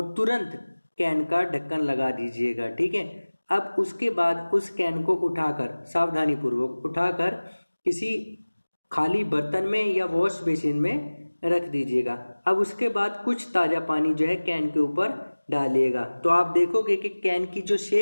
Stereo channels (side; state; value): both; inverted; correlation -1.00